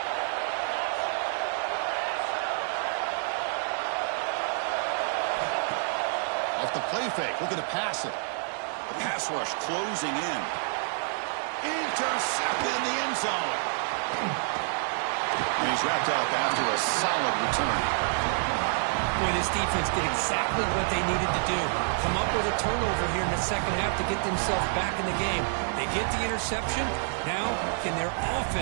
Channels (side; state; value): left; silent; 59 dB below the other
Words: Off the play fake, looking to pass it. The pass rush closing in. Intercepted in the end zone. And he's wrapped up after a solid return. Boy, this defense did exactly what they needed to do. Come up with a turnover here in the second half to get themselves back in the game. They get the interception. Now, can their